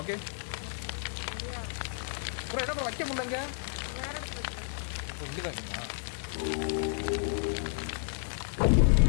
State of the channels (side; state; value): right; silent; digital silence